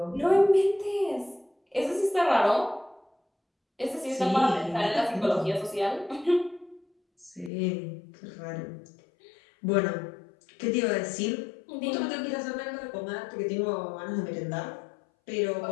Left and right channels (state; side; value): drops out; right; at 7.5 s